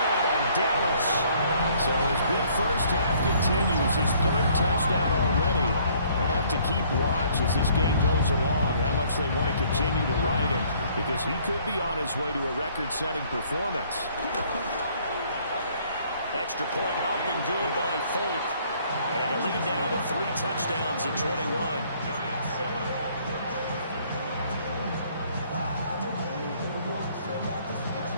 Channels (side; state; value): both; inverted; correlation -0.61